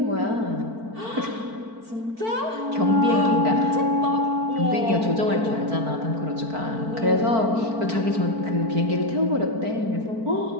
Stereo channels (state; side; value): late; left; 4.5 ms